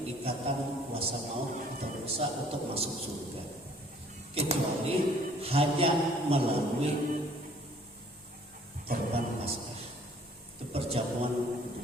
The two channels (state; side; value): normal; both; correlation 0.57